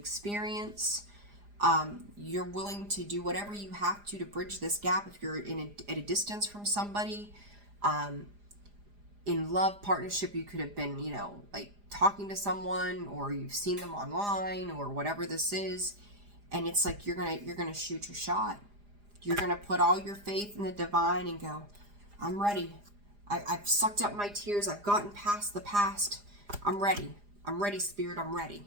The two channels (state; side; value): late; left; 4.9 ms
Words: You're willing to do whatever you have to bridge this gap if you're at a distance from somebody. In love, partnership, you could have been, like talking to someone, or you've seen them online, or whatever this is, and it's like you're gonna shoot your shot. You're gonna put all your faith in the divine and go, I'm ready. I've sucked up my tears. I've gotten past the past. I'm ready. I'm ready, Spirit. I'm ready.